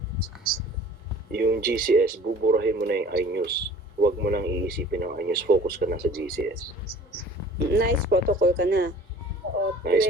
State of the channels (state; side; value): normal; both; correlation 0.48